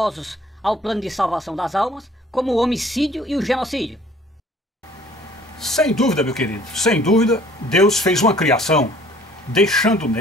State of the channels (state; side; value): normal; both; correlation 0.54